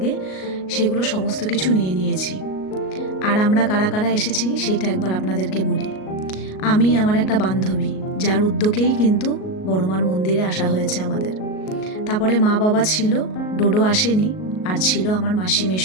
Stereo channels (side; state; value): right; late; 38 ms